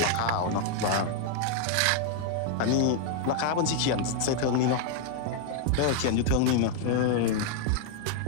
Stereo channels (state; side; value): different; both; correlation 0.00